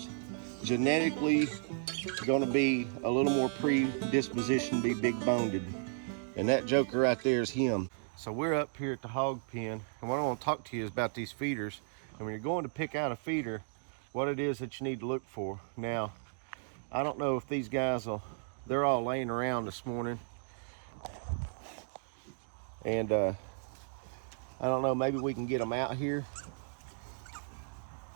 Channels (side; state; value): left; silent; digital silence